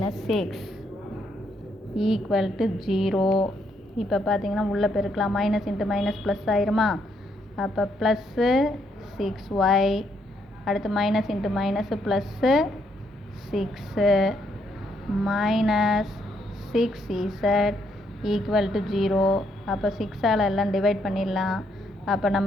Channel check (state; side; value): normal; both; correlation 0.74